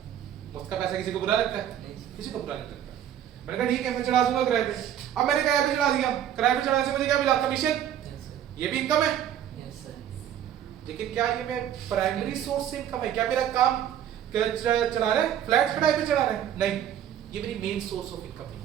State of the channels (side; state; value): left; quieter; 10.5 dB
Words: मुफ्त का पैसा किसी को बुरा लगता है? किसी को बुरा नहीं लगता। मैंने कहा ठीक है, मैं चढ़ा दूंगा किराए पे। अब मैंने किराए पे चढ़ा दिया, किराए पे चढ़ाने से मुझे क्या मिला? कमीशन। ये भी इनकम है। लेकिन क्या ये मैं प्राइमरी सोर्स से इनकम है? क्या मेरा काम चढ़ा रहा है, फ्लैट किराए पे चढ़ा रहा है? नहीं, ये मेरी मेन सोर्स ऑफ इनकम